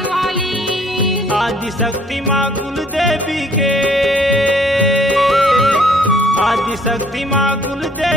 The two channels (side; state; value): both; normal; correlation 0.60